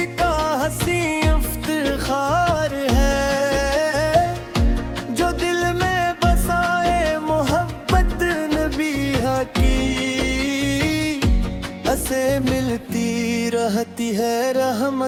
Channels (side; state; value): both; identical; correlation 1.00